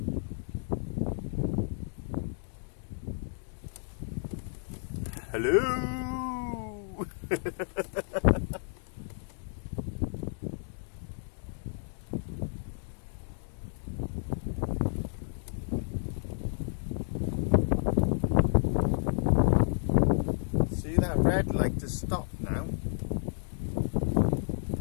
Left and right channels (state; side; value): silent; right; digital silence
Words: Hello! See that red light to stop now?